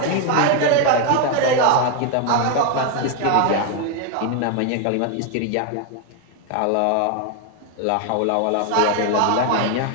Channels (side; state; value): both; different; correlation 0.01